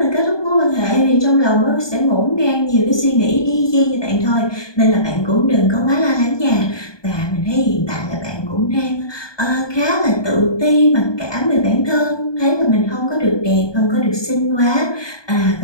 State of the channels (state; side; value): late; right; 1.2 ms